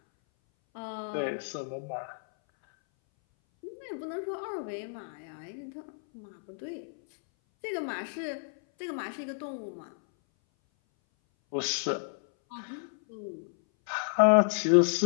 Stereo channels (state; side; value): silent; right; 57 dB below the other